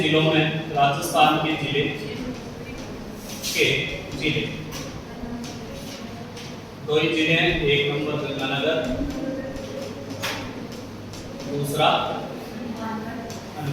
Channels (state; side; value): identical; both; correlation 1.00